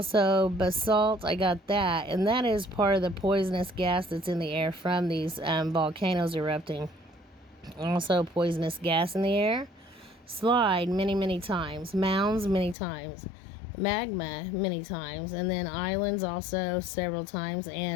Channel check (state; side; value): drops out; right; at 12.8 s